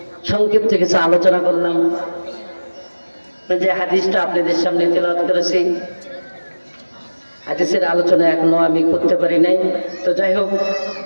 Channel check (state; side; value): inverted; both; correlation -1.00